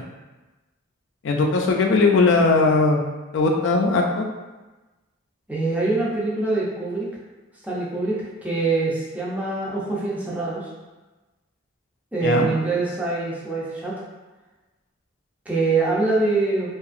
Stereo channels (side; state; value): both; normal; correlation 0.39